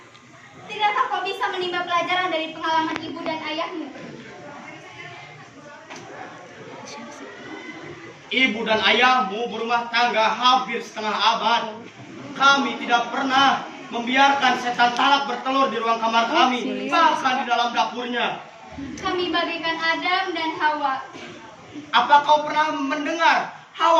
tidakkah kau bisa menimba pelajaran dari pengalaman ibu dan ayahmu? Ibu dan ayahmu berumah tangga hampir setengah abad. Kami tidak pernah membiarkan setan talak bertelur di ruang kamar kami, bahkan di dalam dapurnya. Kami bagaikan Adam dan Hawa. Apa kau pernah mendengar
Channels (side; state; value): both; identical; correlation 1.00